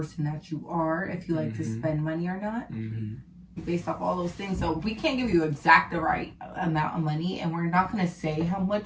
that you are, if you like to spend money or not. Based off all those things. So we can't give you exact the right amount of money, and we're not going to say how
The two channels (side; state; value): both; identical; correlation 1.00